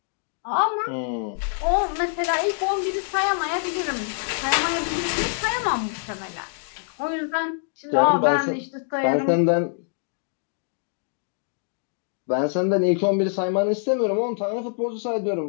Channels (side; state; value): right; silent; digital silence